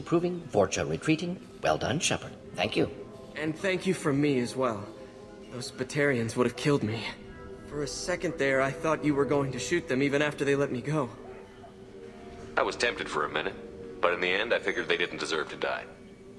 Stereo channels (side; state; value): both; identical; correlation 1.00